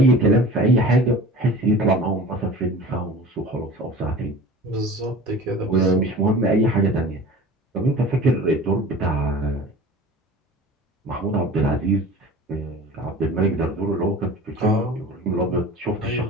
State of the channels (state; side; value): normal; both; correlation 0.39